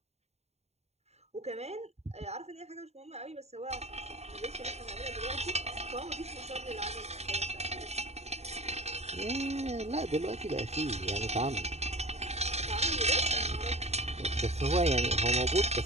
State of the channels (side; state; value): left; late; 0.31 ms